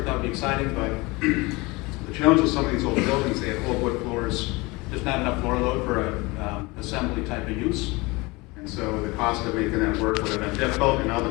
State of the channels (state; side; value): quieter; right; 24.2 dB